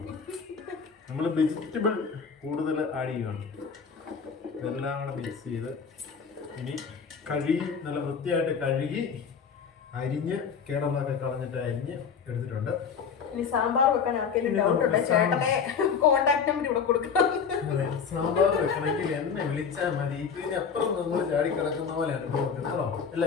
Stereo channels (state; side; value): quieter; right; 6.3 dB